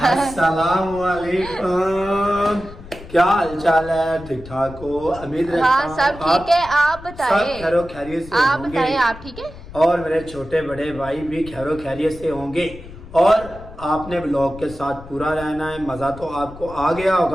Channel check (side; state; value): left; noise; rumble, 16 dB below the sound